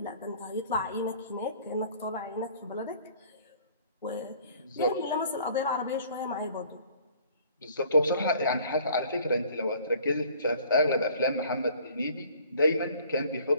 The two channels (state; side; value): inverted; both; correlation -0.54